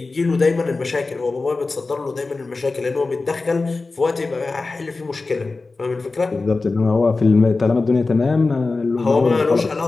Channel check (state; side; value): quieter; right; 3.7 dB